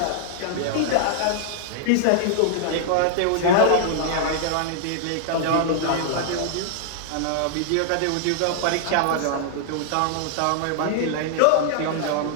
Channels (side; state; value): both; different; correlation -0.01